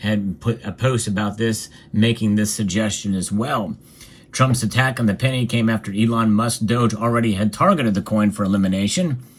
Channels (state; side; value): identical; both; correlation 1.00